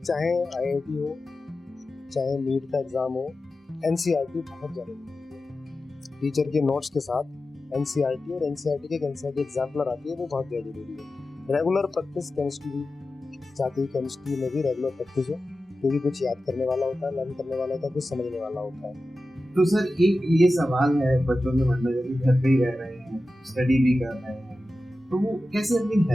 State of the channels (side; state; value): both; normal; correlation 0.94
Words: IIT हो, चाहे नीट का एग्जाम हो, NCERT बहुत ज़्यादा जरूरी है। टीचर के नोट्स के साथ NCERT और NCERT के NCERT एग्जाम्पलर आती है, वो बहुत ज़्यादा जरूरी है। रेगुलर प्रैक्टिस केमिस्ट्री भी चाहती है, केमिस्ट्री में भी रेगुलर प्रैक्टिस हो, क्योंकि कुछ याद करने वाला होता है, लर्न करने वाला होता है, कुछ समझने वाला होता है। तो सर एक ये सवाल है बच्चों के मन में, जब घर पे ही रह रहे हैं, स्टडी भी कर रहे हैं, तो वो कैसे अपनी